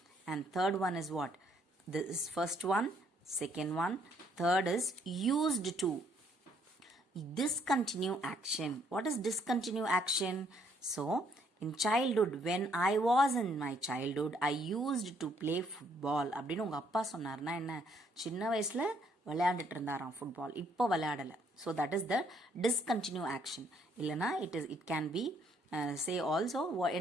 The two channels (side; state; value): both; normal; correlation 0.68